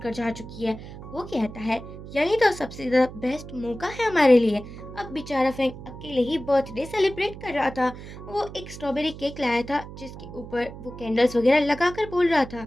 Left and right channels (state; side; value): noise; right; hum, 13 dB below the sound